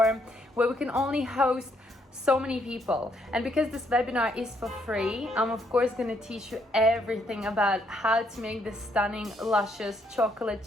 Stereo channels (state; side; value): normal; both; correlation 0.72